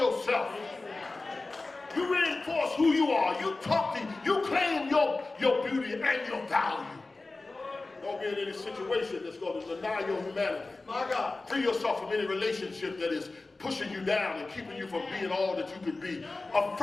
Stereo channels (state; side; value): quieter; right; 3.4 dB